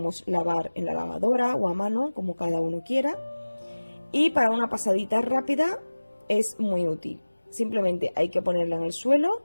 lavar en la lavadora o a mano, como cada uno quiera. Y para una pasadita rápida es muy útil. Simplemente hay que ponerla en el suelo,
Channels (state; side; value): inverted; both; correlation -1.00